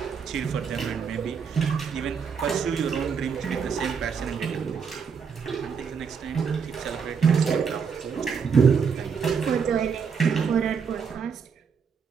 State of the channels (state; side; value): quieter; left; 6.3 dB